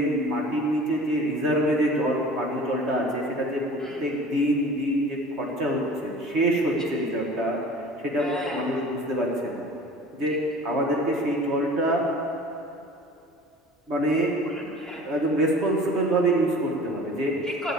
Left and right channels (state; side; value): normal; both; correlation 0.43